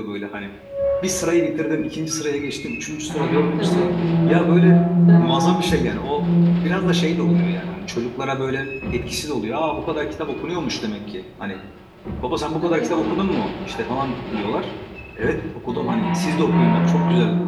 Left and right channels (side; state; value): both; identical; correlation 1.00